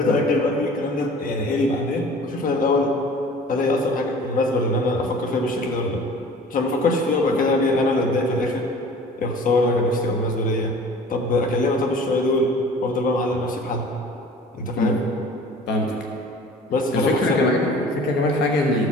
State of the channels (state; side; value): normal; both; correlation 0.46